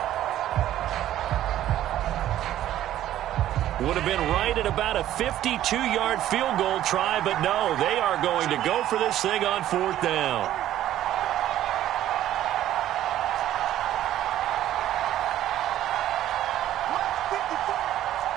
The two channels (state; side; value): quieter; left; 12.7 dB